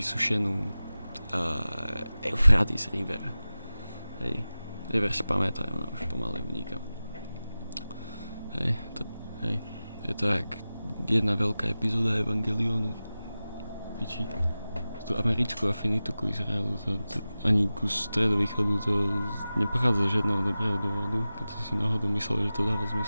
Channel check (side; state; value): both; inverted; correlation -0.95